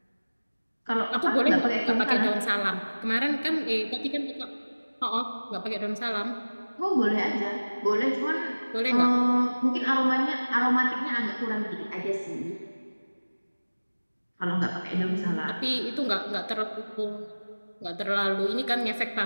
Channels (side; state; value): both; inverted; correlation -1.00